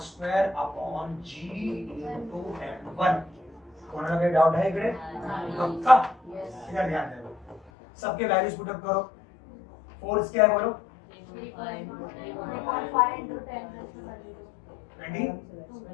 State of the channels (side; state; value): right; drops out; at 7.7 s